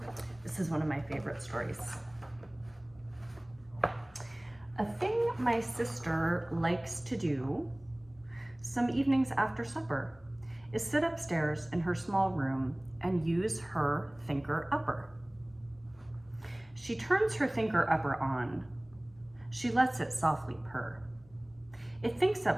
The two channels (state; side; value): noise; left; hum, 27 dB below the sound